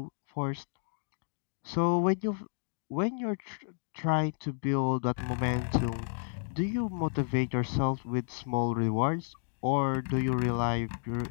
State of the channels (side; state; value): right; silent; digital silence